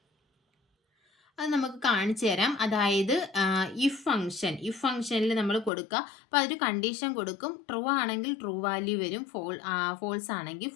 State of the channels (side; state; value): right; drops out; at 5.7 s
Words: അത് നമുക്ക് കാണിച്ചു തരാം. അതായത് ഇഫ് ഫംഗ്ഷനിൽ നമ്മൾ കൊടുക്കുക. അപ്പോൾ അതൊരു കണ്ടീഷൻ കൊടുക്കും. ട്രൂ ആണെങ്കിൽ ട്രൂ വാല്യൂ വരും, ഫോൾസ് ആണെങ്കിൽ